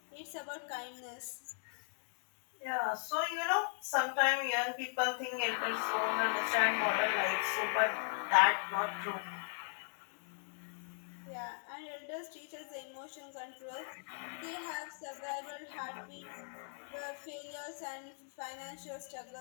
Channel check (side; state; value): right; silent; digital silence